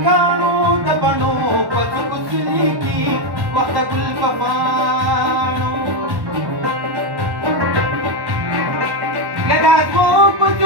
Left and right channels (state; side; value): late; left; 1.1 ms